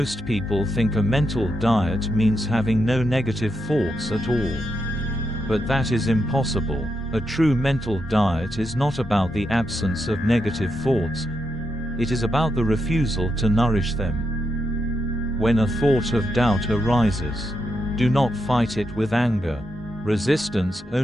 people think a mental diet means having no negative thoughts at all. But that is impossible. A true mental diet is not about the absence of negative thoughts. It is about the refusal to nourish them. When a thought of doubt arises, do not fight it with anger. Resistance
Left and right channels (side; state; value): both; normal; correlation 0.83